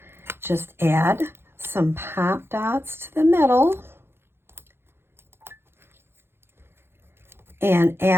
just add some pop dots to the middle and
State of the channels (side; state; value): left; late; 0.11 ms